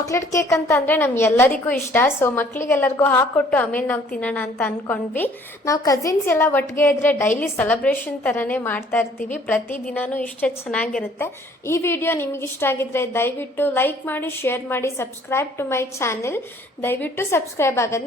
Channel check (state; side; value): normal; both; correlation 0.57